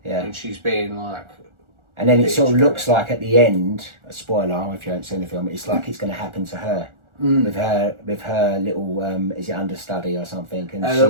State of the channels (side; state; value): left; late; 1.4 ms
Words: and she's being like. And then it sort of looks like at the end, a spoiler if you haven't seen the film, it's like it's going to happen to her. With her little is it understudy or something, and a